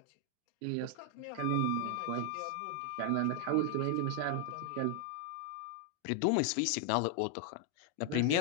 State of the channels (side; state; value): both; different; correlation 0.00